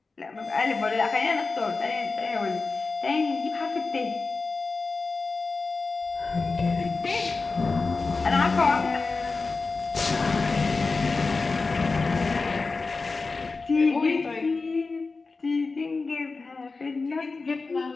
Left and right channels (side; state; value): right; quieter; 4.0 dB